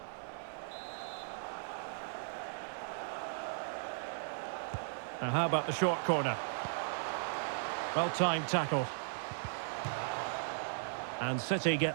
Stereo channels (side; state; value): left; silent; digital silence